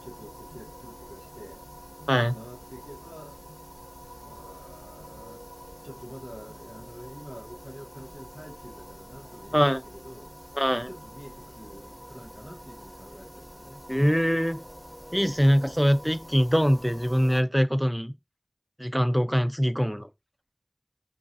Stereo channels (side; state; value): both; identical; correlation 1.00